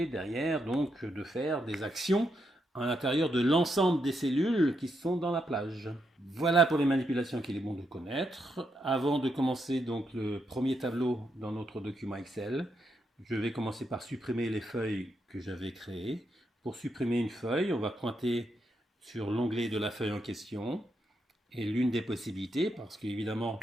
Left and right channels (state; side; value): normal; both; correlation 0.81